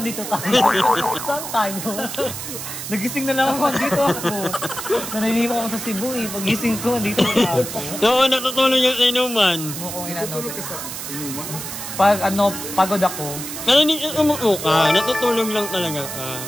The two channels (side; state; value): right; noise; hiss, 7 dB below the sound